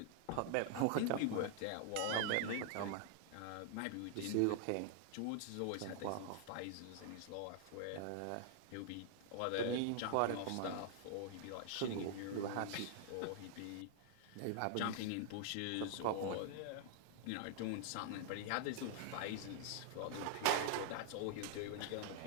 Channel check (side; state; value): both; different; correlation -0.01